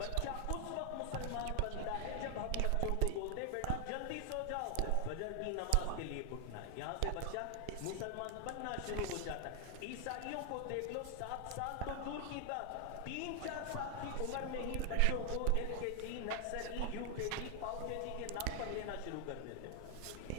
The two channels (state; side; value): different; both; correlation 0.00